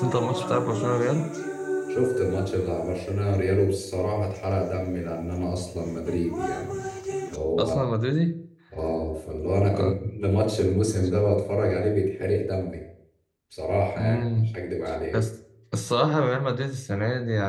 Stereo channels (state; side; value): identical; both; correlation 1.00